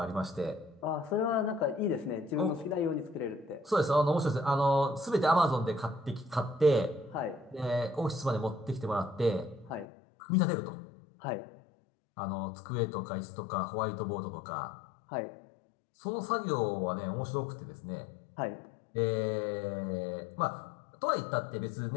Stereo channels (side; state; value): right; drops out; at 9.9 s